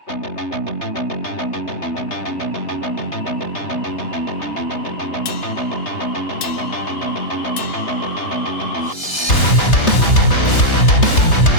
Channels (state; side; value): late; right; 3.3 ms